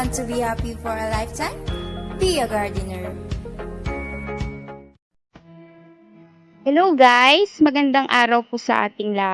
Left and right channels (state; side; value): identical; both; correlation 1.00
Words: to be happy for a lifetime, be a gardener. Hello guys! Magandang araw po sa ating